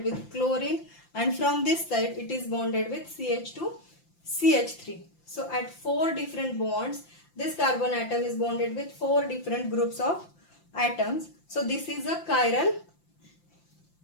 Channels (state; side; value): late; right; 5.8 ms